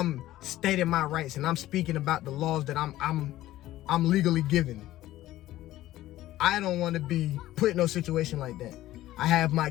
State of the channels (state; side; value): quieter; right; 15.1 dB